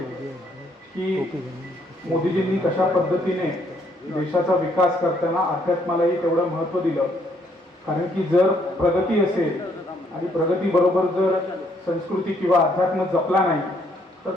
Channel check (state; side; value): normal; both; correlation 0.69